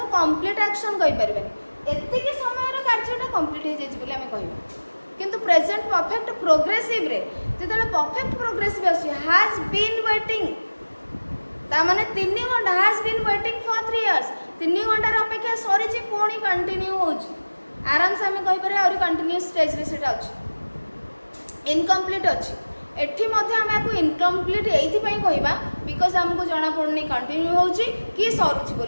एक्शन कहीपर एति समय कार्यटा कंप्लीट हो कह किंतु प्रेजेंट परफेक्ट प्रोग्रेसिव रे जेतले परफेक्ट प्रोग्रेसिव आसी हैज बीन वेटिंग ता माने 3 घंटा has been waiting for 3 years 3 घंटार अपेक्षा सरी जे पुणी कंटिन्यू होची आराम से हमें कहि पारे और कंटिन्यूअस स्टेज रे सेटा अछि इनकम्प्लीट अछि एठी मध्ये हम आपको इनकम्प्लीट एथि पई कहबा बिकॉज़ हमको जाना पड़नी कंटिन्यू होची कि सरुची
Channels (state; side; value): inverted; both; correlation -1.00